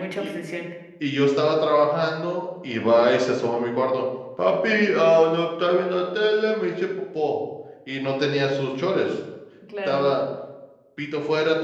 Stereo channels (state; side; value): identical; both; correlation 1.00